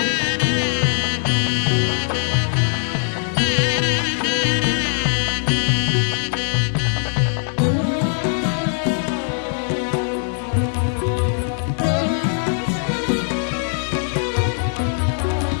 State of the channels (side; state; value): right; silent; 65 dB below the other